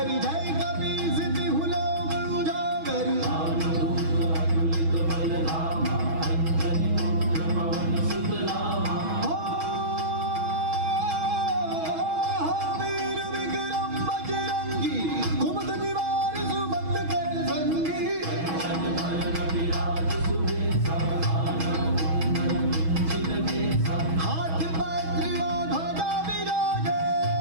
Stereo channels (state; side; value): late; left; 6.2 ms